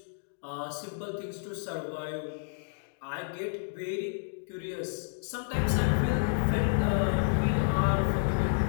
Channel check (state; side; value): silent; right; digital silence